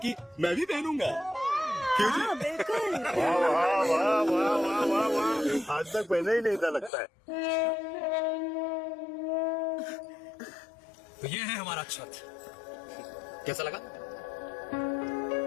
मैं भी पहनूंगा। हाँ बिल्कुल। वाह वाह वाह वाह वाह वाह वाह, आज तक पहले ही नहीं था लगता है। तो ये है हमारा छत, कैसा लगा?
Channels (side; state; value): right; drops out; at 6.9 s